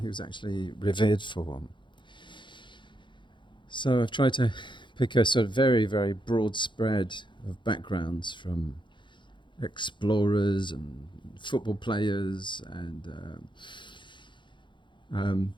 was actually revered for. So I've tried to pick a sort of very, very broad spread of backgrounds, from explorers and football players and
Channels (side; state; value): right; late; 0.23 ms